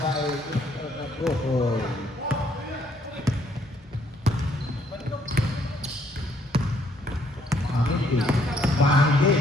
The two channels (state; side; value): normal; both; correlation 0.68